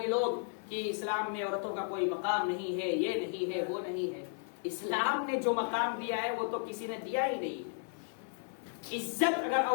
لوگ، کہ اسلام میں عورتوں کا کوئی مقام نہیں ہے، یہ نہیں ہے، وہ نہیں ہے. اسلام نے جو مقام دیا ہے وہ تو کسی نے دیا ہی نہیں. عزت اگر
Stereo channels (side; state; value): right; silent; 55 dB below the other